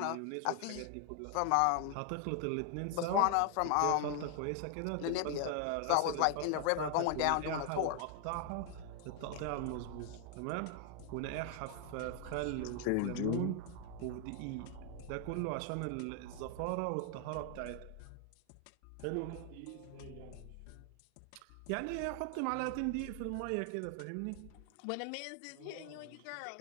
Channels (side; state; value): both; different; correlation 0.00